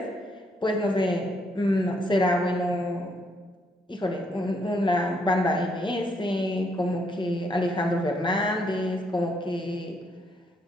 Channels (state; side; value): normal; both; correlation 0.73